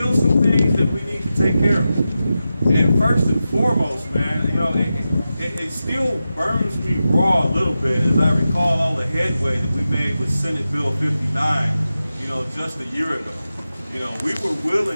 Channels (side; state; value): both; inverted; correlation -0.92